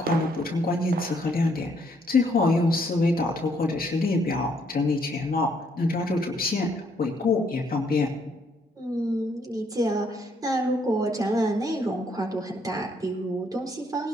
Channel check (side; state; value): both; normal; correlation 0.70